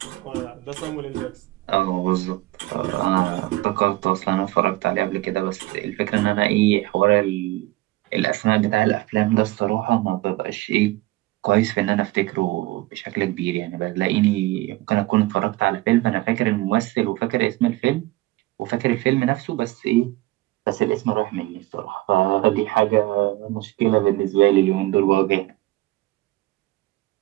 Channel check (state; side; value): quieter; left; 18.9 dB